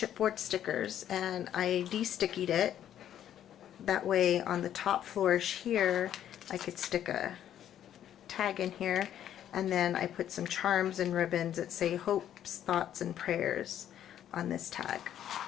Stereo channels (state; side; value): quieter; right; 10.7 dB